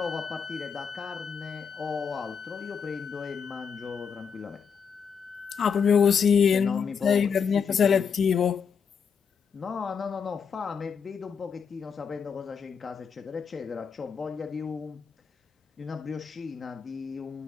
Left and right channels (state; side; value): quieter; right; 6.5 dB